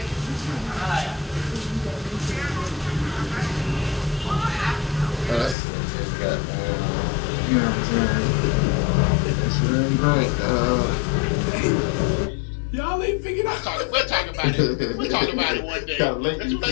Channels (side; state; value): right; drops out; at 5.6 s